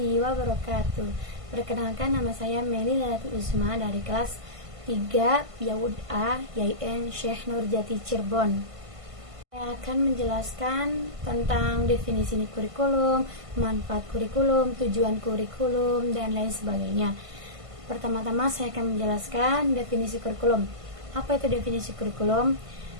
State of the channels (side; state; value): left; late; 1.5 ms